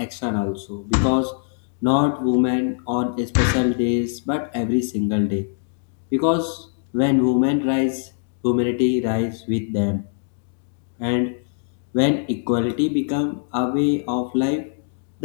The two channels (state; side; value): silent; right; digital silence